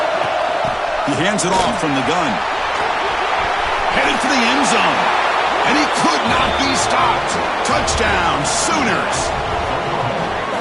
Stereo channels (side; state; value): both; identical; correlation 1.00